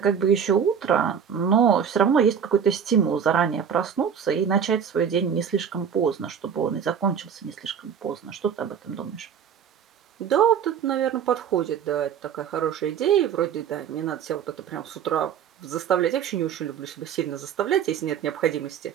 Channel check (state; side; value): quieter; left; 7.8 dB